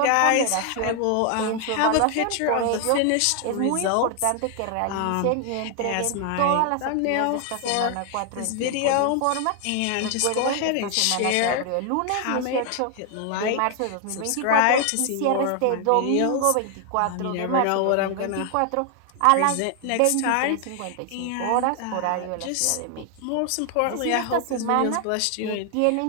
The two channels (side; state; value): both; different; correlation 0.00